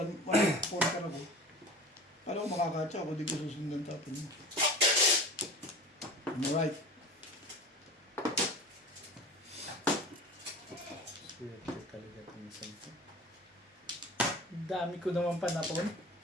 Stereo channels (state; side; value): normal; both; correlation 0.37